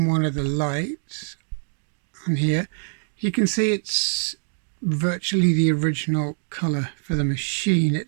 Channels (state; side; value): silent; left; digital silence